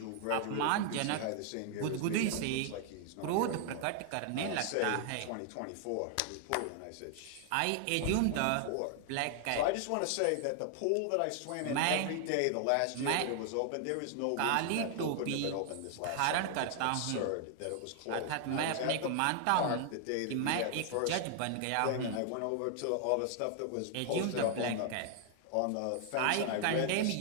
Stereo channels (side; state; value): both; different; correlation 0.00